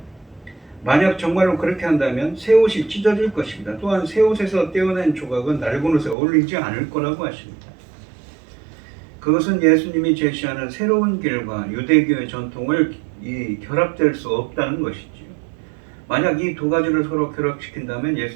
만약 정말로 그렇게 한다면 새 옷이 찢어질 것입니다. 또한 새 옷에서 떼어낸 조각은 낡은 옷에 어울리지 않을 거라고 하십니다. 그것은 예수님이 제시하는 새로운 길과 유대교의 전통을 결합될 수 없다는 것이지요. 만약 이 두 가지를 서로 결합시킨다면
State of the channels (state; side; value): drops out; left; at 6.2 s